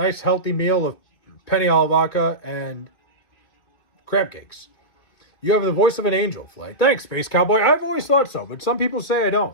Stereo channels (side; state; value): right; late; 2.4 ms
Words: healthy meal of penny alla vodka and crab cakes. You have the voice of an angel, Flay. Thanks, Space Cowboy. I've always thought so, but some people say I don't.